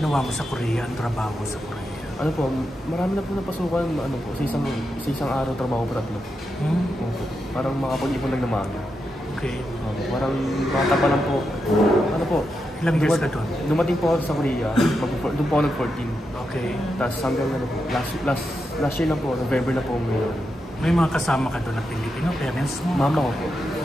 mo sa Korea, ang trabaho mo sa Korea. Ano po, marami na po napasukan, sa isang araw trabaho pa tatlo. Opo. Parang makapag-ipon lang naman. Okay. Parang bata pa lang po. Ano po? Ilang years ka doon? Dumating po ako sa Korea. Doon po ako nag-14. Okay. Tapos hanggang po, last year na po, November na po ngayon. May mga kasama ka doon na Pilipino, parents mo? Mama ko po.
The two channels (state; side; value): normal; both; correlation 0.86